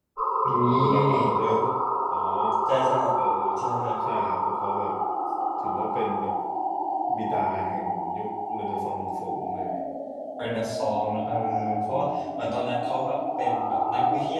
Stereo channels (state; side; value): identical; both; correlation 1.00